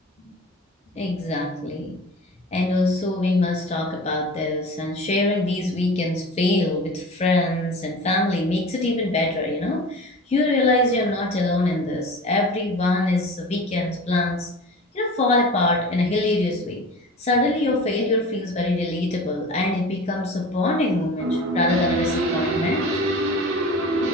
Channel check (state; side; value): normal; both; correlation 0.37